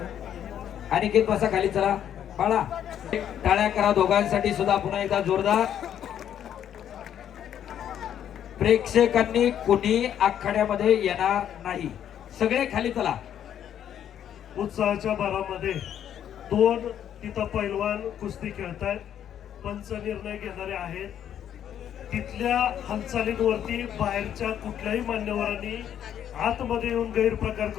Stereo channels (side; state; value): right; quieter; 9.9 dB